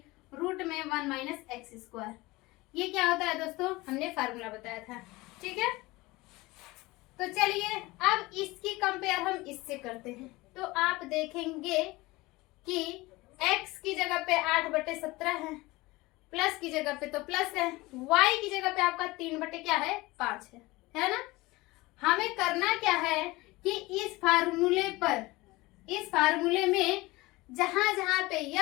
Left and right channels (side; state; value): right; quieter; 21.2 dB